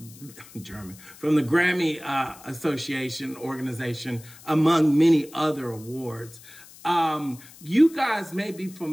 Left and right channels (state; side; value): noise; left; hiss, 21 dB below the sound